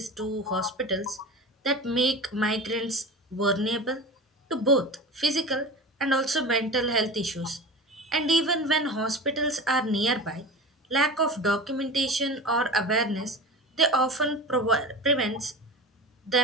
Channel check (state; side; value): normal; both; correlation 0.31